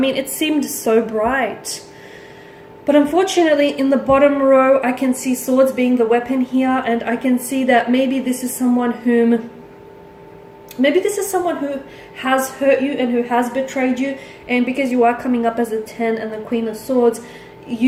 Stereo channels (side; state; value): both; identical; correlation 1.00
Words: seemed so bright. But unfortunately, in the bottom row, I can see swords being the weapon here, and I can see that maybe this is someone who has hurt you and who has betrayed you, and because you are coming up as a 10 and the Queen of Swords,